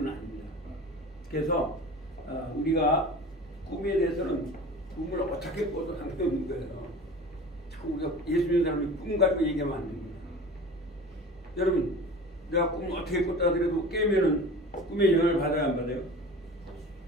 아닙니다. 그래서 우리가 꿈에 대해서는 꿈을 어떻게 꿔도 상관없는 거예요. 자꾸 우리가 예수 믿는 사람이 꿈 가지고 얘기하면 안 됩니다. 여러분, 내가 꿈을 어떻게 꿨다 하더라도 깨면은 꿈의 영향을 받아야 안 받아요?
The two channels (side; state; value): both; normal; correlation 0.37